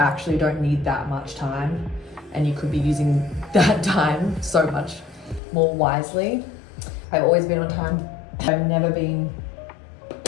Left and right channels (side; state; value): right; drops out; at 5.4 s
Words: don't need that much time and you could be using that time so much more wisely. I've always been on time. I've never been